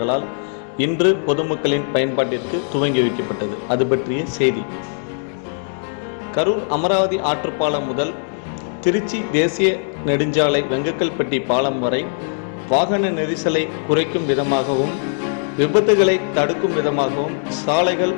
இன்று பொதுமக்களின் பயன்பாட்டிற்கு துவங்கி வைக்கப்பட்டது. அது பற்றிய செய்தி. கரூர் அமராவதி ஆற்றுப்பாலம் முதல் திருச்சி தேசிய நெடுஞ்சாலை வெங்கக்கல்பட்டி பாலம் வரை வாகன நெரிசலை குறைக்கும் விதமாகவும் விபத்துகளை தடுக்கும் விதமாகவும் சாலைகள்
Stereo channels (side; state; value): right; silent; digital silence